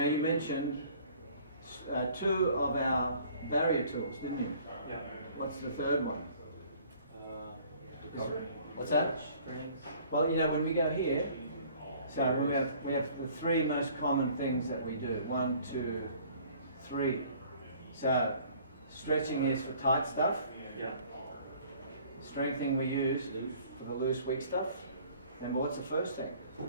you mentioned 2 of our barrier tools, didn't you? Yeah. What's the third one? Recovery. What's that? Strength. Well, when we go here, so we have the 3 most common things that we do. 1, 2, 3. So stretching is for tight stuff. Yeah. Strengthening we use for the loose, weak stuff. Remember, what's the first thing?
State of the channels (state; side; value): inverted; both; correlation -0.54